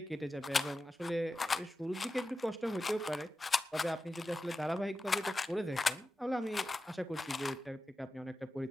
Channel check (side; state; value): both; normal; correlation 0.93